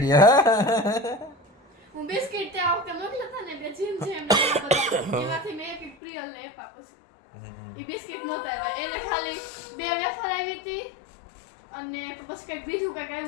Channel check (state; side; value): drops out; right; at 6.0 s